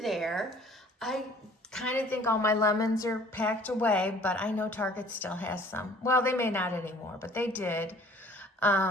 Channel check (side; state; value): both; normal; correlation 0.53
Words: there, I kind of think all my lemons are packed away, but I know Target still has some. Well, they may not anymore, but they did.